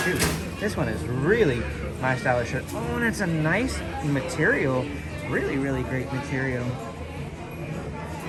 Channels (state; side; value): identical; both; correlation 1.00